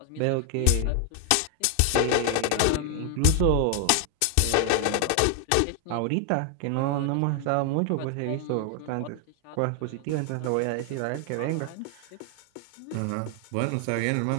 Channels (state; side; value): different; both; correlation 0.00